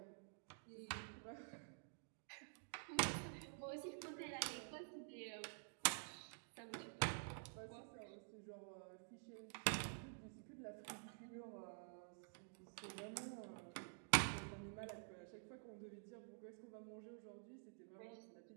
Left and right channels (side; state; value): left; silent; digital silence